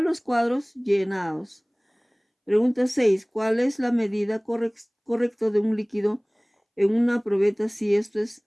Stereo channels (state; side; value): identical; both; correlation 1.00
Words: los cuadros llenados. Pregunta 6. ¿Cuál es la medida correcta de un líquido en una probeta si esto es